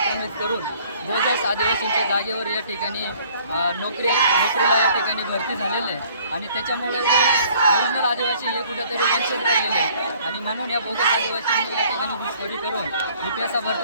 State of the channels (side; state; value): both; inverted; correlation -0.57